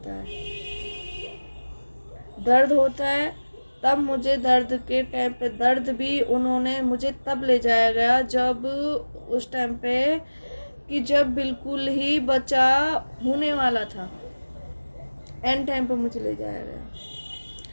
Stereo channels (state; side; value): inverted; both; correlation -1.00